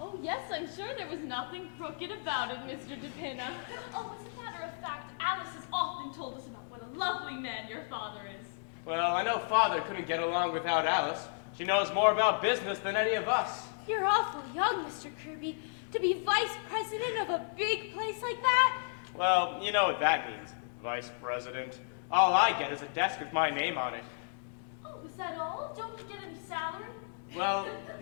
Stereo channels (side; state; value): right; silent; digital silence